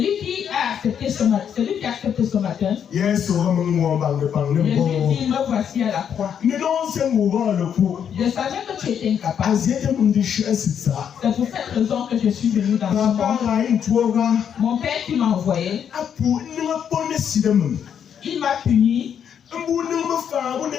qui a accepté ce matin, Jésus dit, me voici à la croix. Je savais que tu étais incapable. C'est pour cette raison que je suis venu dans ce monde. Mon Père qui m'a envoyé, il m'a puni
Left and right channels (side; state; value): right; quieter; 8.3 dB